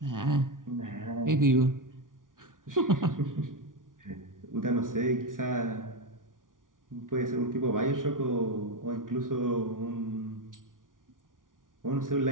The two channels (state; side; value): late; left; 0.89 ms